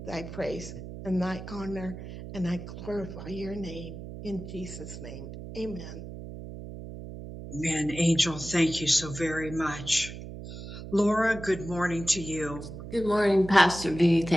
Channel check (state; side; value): noise; right; hum, 11 dB below the sound